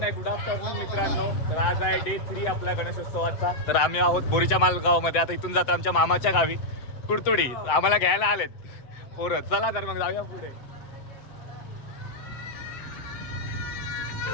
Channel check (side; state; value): right; late; 7.8 ms